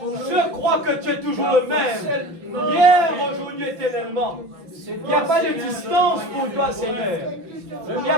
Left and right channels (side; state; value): left; late; 5.8 ms